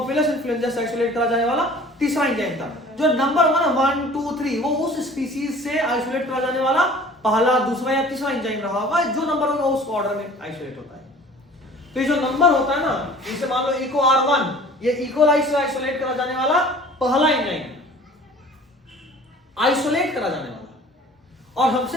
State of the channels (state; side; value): normal; both; correlation 0.47